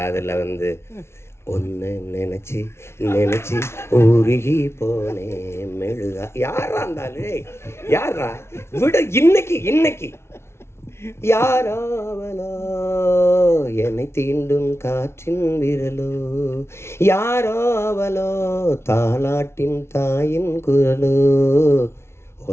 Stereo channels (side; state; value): right; late; 0.12 ms